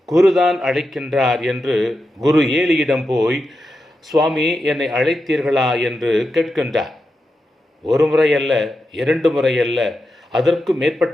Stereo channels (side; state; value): both; normal; correlation 0.88